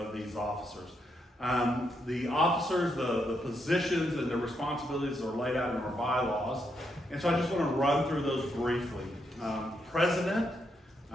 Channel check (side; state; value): both; normal; correlation 0.79